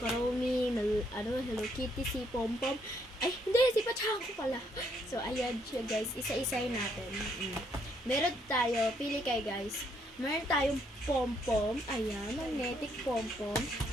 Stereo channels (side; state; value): both; normal; correlation 0.71